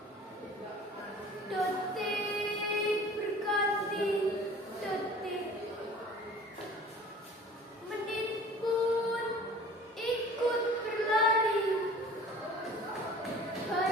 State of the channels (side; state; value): both; normal; correlation 0.45